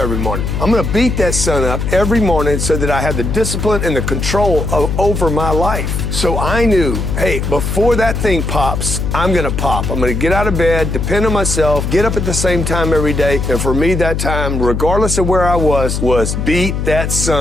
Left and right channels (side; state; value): left; noise; hum, 2 dB below the sound